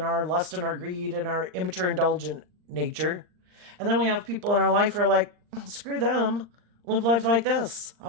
our lust and our greed and our immature indulgent nature. And then we have people in our life who are like, screw them. Live life like this.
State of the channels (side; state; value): left; late; 39 ms